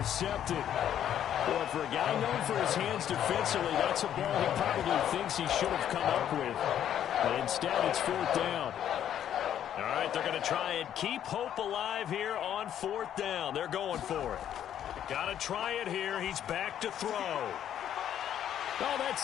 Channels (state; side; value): quieter; right; 10.3 dB